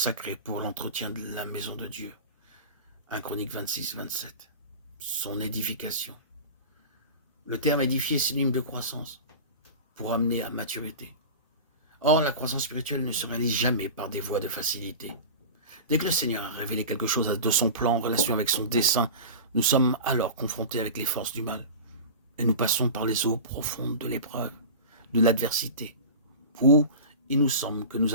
pour l'entretien de la maison de Dieu. 1 Chronique 26, 27. Son édification. Le terme édifier est synonyme de croissance, pour amener à maturité. Or, la croissance spirituelle ne se réalise jamais par des voies de facilité. Dès que le Seigneur a révélé quelque chose de son plan en relation avec son dessein, nous sommes alors confrontés avec les forces du mal. Et nous passons par les eaux profondes de l'épreuve, de l'adversité, où il nous semble que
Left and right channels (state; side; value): inverted; both; correlation -0.31